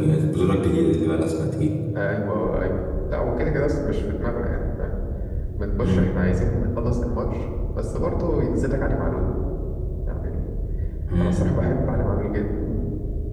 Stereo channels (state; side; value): identical; both; correlation 1.00